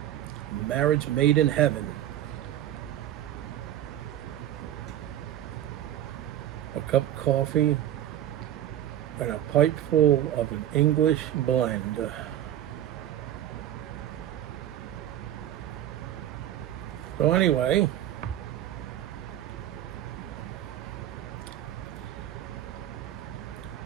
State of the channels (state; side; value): quieter; left; 11.8 dB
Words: Marriage made in heaven. A cup of coffee and a pipe full of an English blend. So anyway,